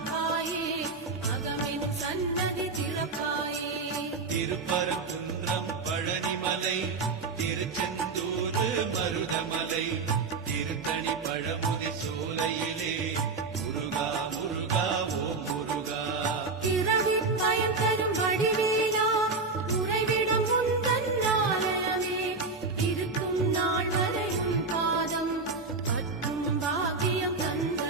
அகமென் சன்னதி திறப்பாயே திருப்பரங்குன்றம் பழனிமலை திருச்செந்தூர் மருதமலை திருத்தணி பழமுதி சோலையிலே முருகா முருகா ஓ முருகா பிறவி பயன் தரும் வடிவேலா உறைவிடும் உந்தன் ஆலயமே இருக்கும் நாள் வரை உன் பாதம் பற்றும் பாக்கியம்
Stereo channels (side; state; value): left; quieter; 4.1 dB